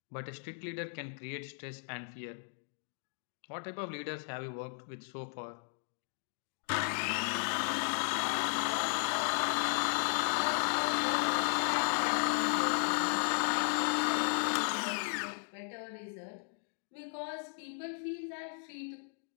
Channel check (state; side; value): silent; right; digital silence